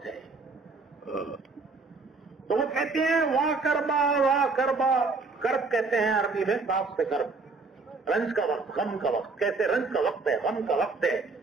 ہے. تو وہ کہتے ہیں واہ کربا, واہ کربا. کرب کہتے ہیں عربی میں باپ سے کرب, رنج کا وقت, غم کا وقت. کیسے رنج کا وقت ہے, غم کا وقت ہے,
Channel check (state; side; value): quieter; left; 4.0 dB